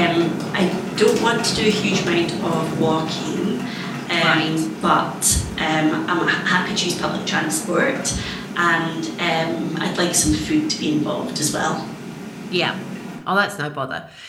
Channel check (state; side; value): identical; both; correlation 1.00